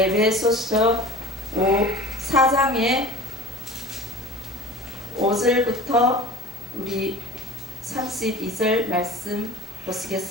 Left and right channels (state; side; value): normal; both; correlation 0.39